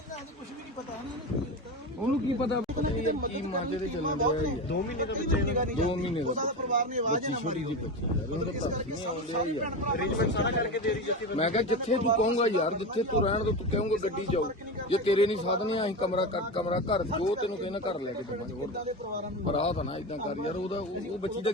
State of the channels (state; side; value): normal; both; correlation 0.22